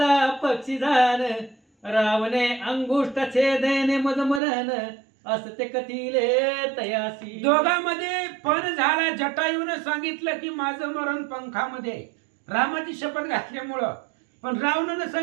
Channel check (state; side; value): drops out; left; at 4.4 s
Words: पक्षी जाण रावणे अंगुष्ठ छेदेने मज मरण असते कथिले तयासी. दोघांमध्ये पण झाला. जटायूनं सांगितलं की माझं मरण पंखामध्ये, रामाची शपथ घातल्यामुळं. पण रावणानं